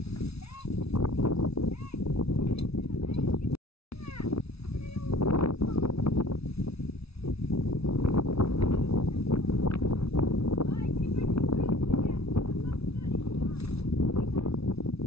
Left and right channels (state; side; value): late; right; 0.78 ms